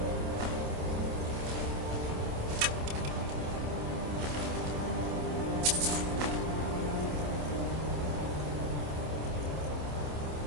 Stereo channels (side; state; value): left; late; 27 ms